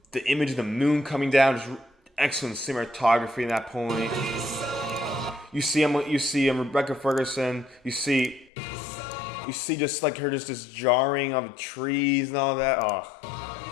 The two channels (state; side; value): drops out; right; at 8.5 s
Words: The image of the moon coming down, just excellent cinematography in that point. You see Rebecca Ferguson. You see just like her, just this jarring of the trees and all that. Oh.